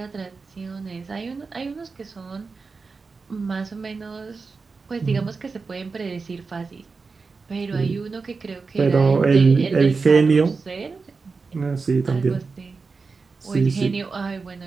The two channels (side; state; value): left; quieter; 4.5 dB